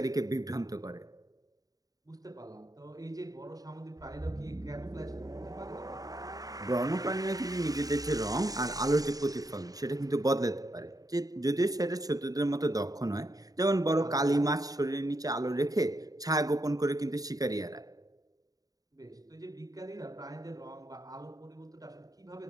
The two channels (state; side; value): late; left; 0.18 ms